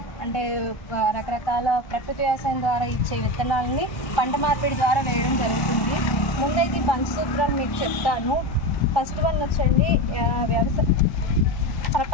అంటే రకరకాల ప్రకృతి వ్యవసాయం ద్వారా ఇచ్చే విత్తనాలని పంట మార్పిడి ద్వారా వేయడం జరుగుతుంది. ముందైతే ఈ పంచసూత్రాలు మీకు చెప్తాను. ఫస్ట్ వన్ వచ్చండి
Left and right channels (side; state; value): right; late; 1.3 ms